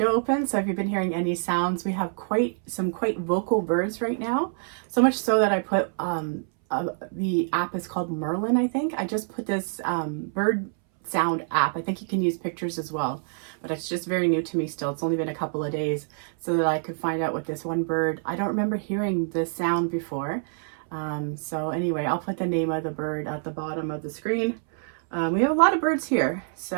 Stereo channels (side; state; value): left; silent; 61 dB below the other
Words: open, so if you've been hearing any sounds, we have some quite vocal birds right now. So much so that I put, the app is called Merlin, I think. I just put this bird sound app. I think you can use pictures as well, but it's just very new to me still. It's only been a couple of days, so that I could find out what this one bird, I don't remember hearing this sound before. So anyway, I'll put the name of the bird at the bottom of the screen. We have a lot of birds here,